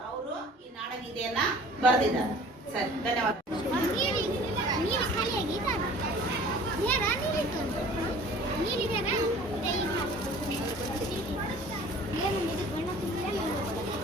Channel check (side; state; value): both; normal; correlation 0.47